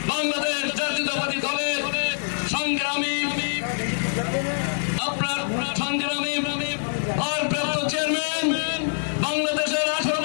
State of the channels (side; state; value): right; silent; 57 dB below the other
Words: বাংলাদেশ জাতীয়তাবাদী দলের সংগ্রামী